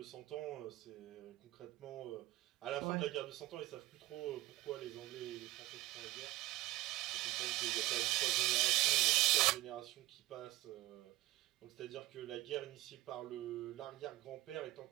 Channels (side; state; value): left; quieter; 18.5 dB